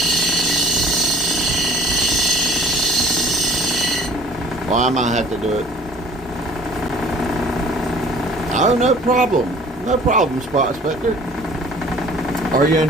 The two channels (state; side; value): normal; both; correlation 0.51